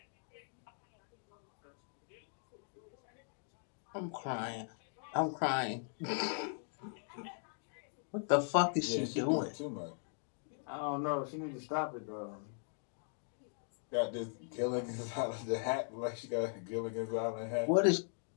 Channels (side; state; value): right; silent; 52 dB below the other